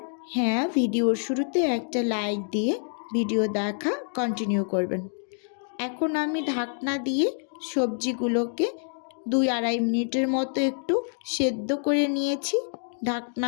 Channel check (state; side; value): silent; right; 59 dB below the other